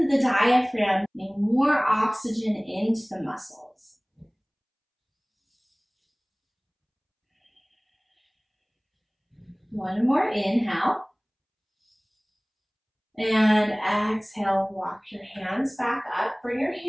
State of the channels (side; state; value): both; identical; correlation 1.00